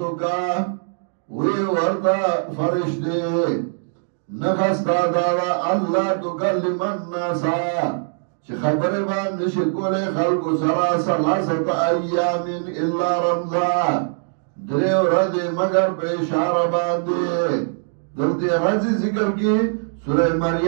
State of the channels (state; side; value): silent; left; digital silence